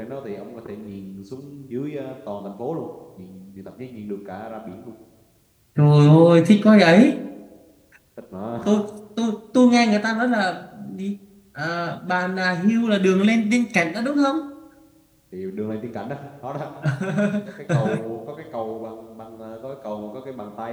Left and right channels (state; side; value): identical; both; correlation 1.00